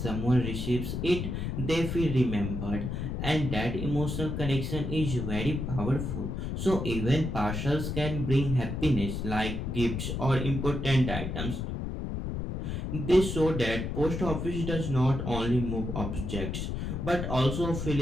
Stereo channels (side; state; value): left; noise; rumble, 3 dB below the sound